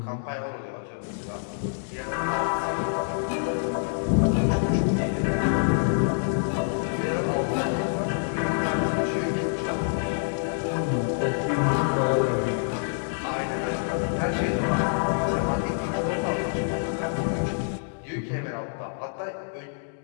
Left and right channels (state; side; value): silent; right; digital silence